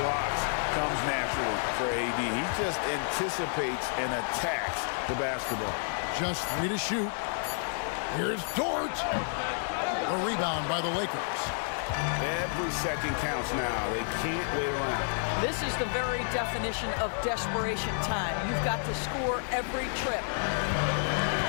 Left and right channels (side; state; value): right; silent; 58 dB below the other